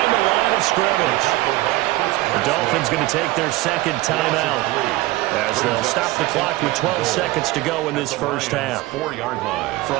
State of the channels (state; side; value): quieter; left; 18.7 dB